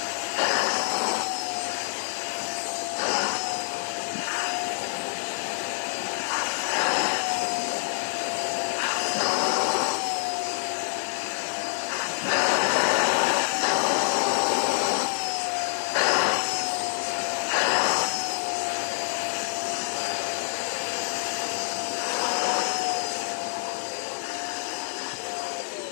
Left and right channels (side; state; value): right; silent; 60 dB below the other